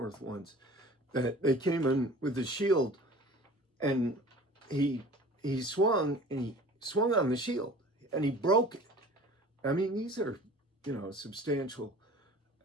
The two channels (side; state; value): both; normal; correlation 0.44